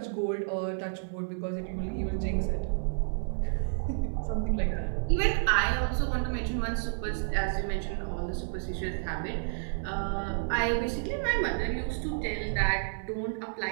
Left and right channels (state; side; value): silent; left; digital silence